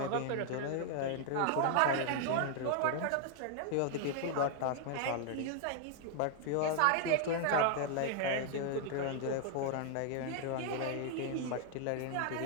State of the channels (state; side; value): different; both; correlation 0.00